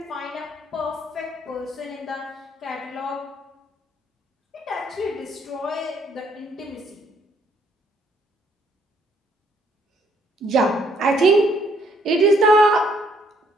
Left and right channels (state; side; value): normal; both; correlation 0.67